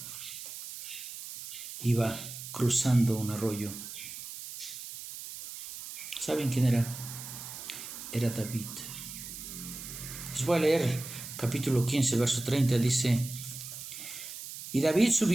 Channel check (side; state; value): right; noise; hiss, 10 dB below the sound